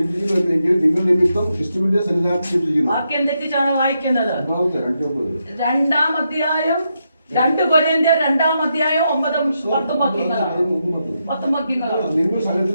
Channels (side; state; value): both; inverted; correlation -0.83